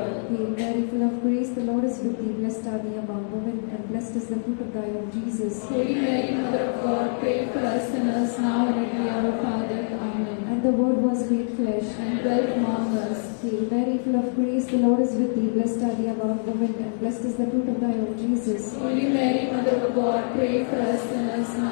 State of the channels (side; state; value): right; silent; digital silence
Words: Hail Mary, full of grace, the Lord is with thee. Blessed are thee among women, and blessed is the fruit of thy womb, Jesus. Holy Mary, Mother of God, pray for us sinners now and at the hour of our death. Amen. And the Word was made flesh, And dwelt among us. Hail Mary, full of grace, the Lord is with thee. Blessed are thee among women, and blessed is the fruit of thy womb, Jesus. Holy Mary, Mother of God, pray for us sinners